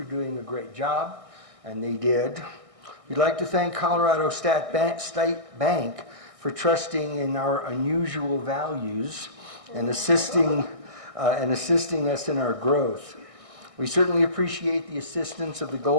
doing a great job, and they did. We'd like to thank Colorado State Bank for trusting in our unusual values and assisting us in our growth. We certainly appreciate the assistance of the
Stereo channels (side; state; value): left; late; 1.6 ms